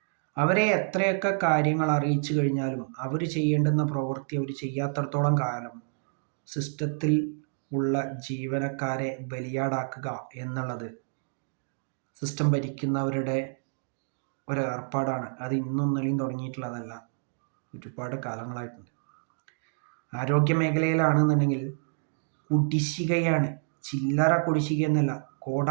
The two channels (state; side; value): silent; left; digital silence